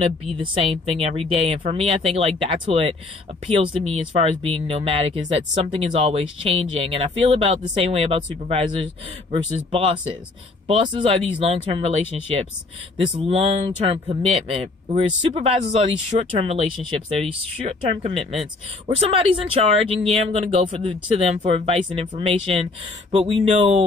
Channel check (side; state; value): right; quieter; 3.4 dB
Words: be the same thing every day. And for me, I think, like, that's what appeals to me as far as being nomadic, is that something is always changing. And I feel about the same way about supervisors versus bosses. Bosses are these long-term relationships, this long-term commitment, whereas supervisors are these short-term relationships. They're these short-term commitments where somebody's in charge, and yeah, I'm gonna go to them for advice and information, but we